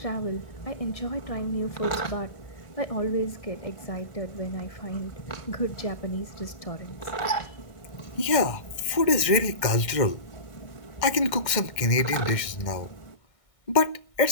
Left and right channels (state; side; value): late; right; 1.6 ms